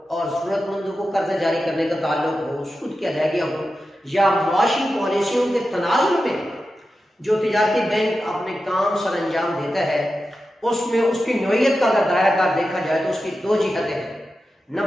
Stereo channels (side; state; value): both; normal; correlation 0.91